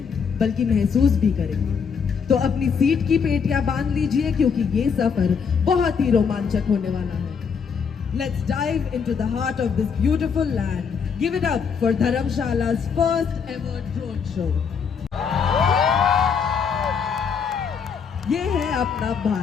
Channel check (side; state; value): right; quieter; 6.3 dB